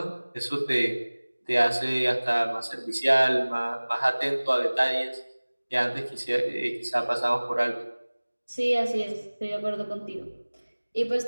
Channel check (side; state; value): both; inverted; correlation -1.00